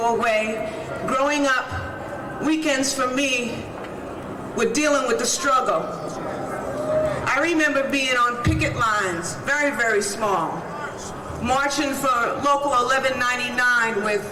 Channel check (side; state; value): both; identical; correlation 1.00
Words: away. Growing up, weekends for me were dealing with the struggle. I remember being on picket lines, very, very small, marching for Local 1199 with